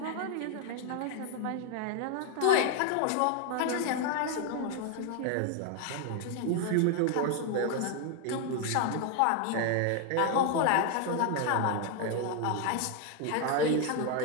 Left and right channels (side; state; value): both; different; correlation 0.01